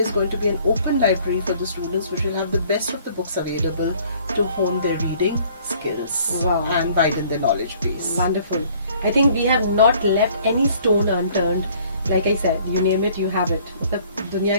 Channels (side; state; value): both; inverted; correlation -0.57